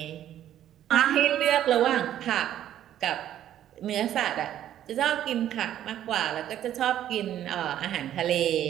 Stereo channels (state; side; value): quieter; left; 11.4 dB